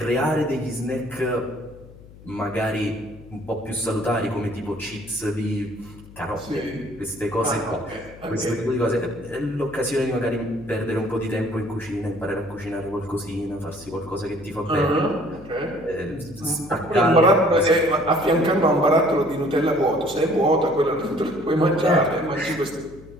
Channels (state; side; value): noise; left; hum, 20 dB below the sound